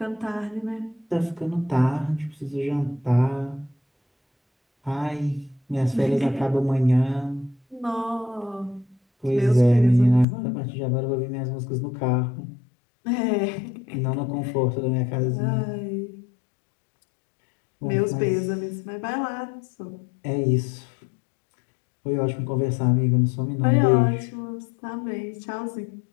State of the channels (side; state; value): right; drops out; at 10.2 s